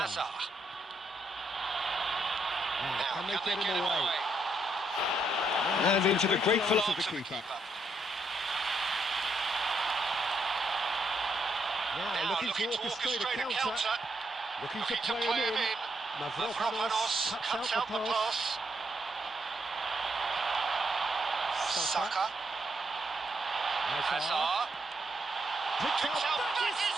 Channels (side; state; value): both; normal; correlation 0.77